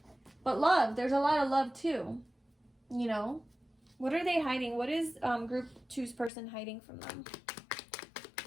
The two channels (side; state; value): right; drops out; at 6.3 s